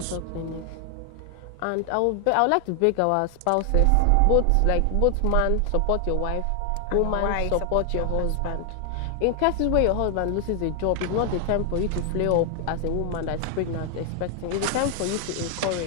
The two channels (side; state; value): both; different; correlation 0.00